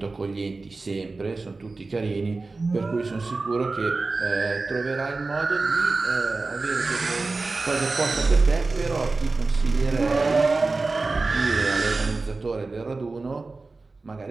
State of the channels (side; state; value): left; quieter; 3.6 dB